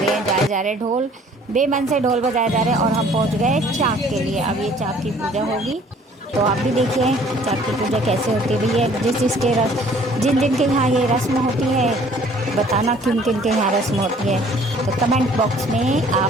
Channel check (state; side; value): normal; both; correlation 0.55